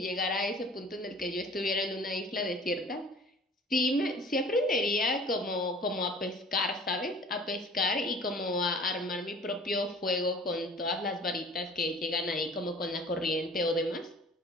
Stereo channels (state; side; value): normal; both; correlation 0.47